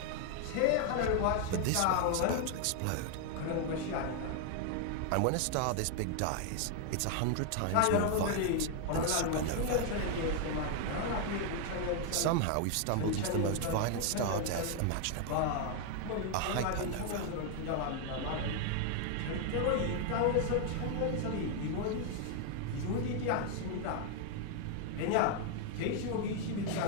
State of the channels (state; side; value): different; both; correlation 0.00